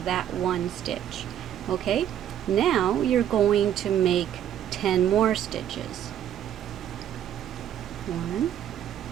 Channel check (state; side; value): quieter; left; 10.4 dB